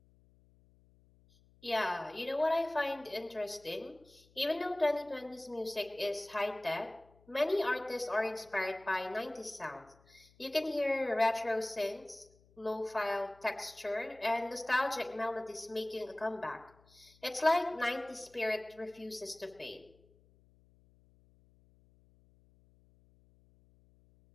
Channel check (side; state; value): left; noise; hum, 29 dB below the sound